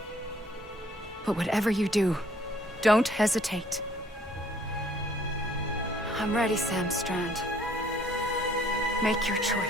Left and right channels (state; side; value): normal; both; correlation 0.61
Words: But whatever you do, don't hesitate. I'm ready, Sam Strand. Make your